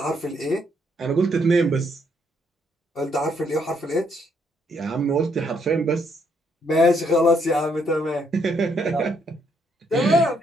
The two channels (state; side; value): normal; both; correlation 0.72